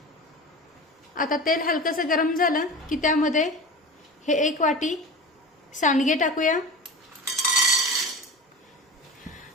आता तेल हलकसं गरम झालं की त्यामध्ये हे 1 वाटी सांडगे टाकूया।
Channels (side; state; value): both; normal; correlation 0.31